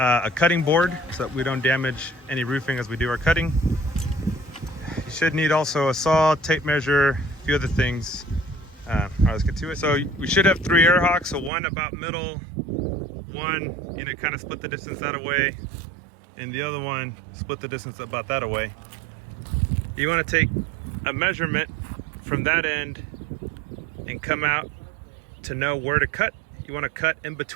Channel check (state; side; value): drops out; left; at 11.5 s